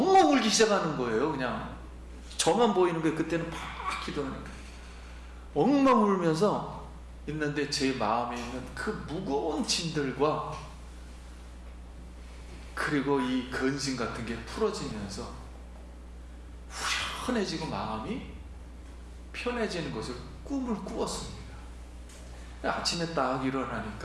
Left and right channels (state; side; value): identical; both; correlation 1.00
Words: 울기 시작하는 거예요. 그냥 저만 보이는 게 그때는 막 기도하니까 엉엉 울면서 있는데 제 마음에 있는 그 무거운 짐들과 그리고 이 근심 같은 게 풀어지면서 후련해지고 마음이 편해지는 것을 꿈을 꾸었습니다. 아침에 딱